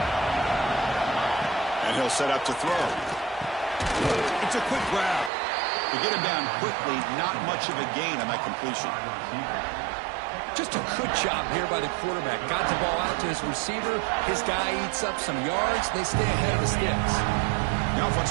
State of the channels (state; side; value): drops out; left; at 5.3 s